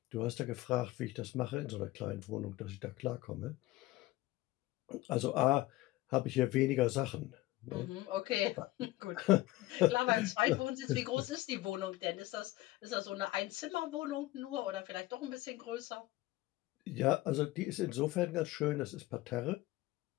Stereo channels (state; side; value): quieter; right; 17.9 dB